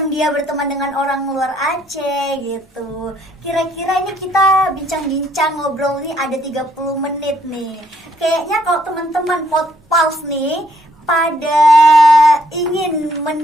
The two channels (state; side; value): normal; both; correlation 0.68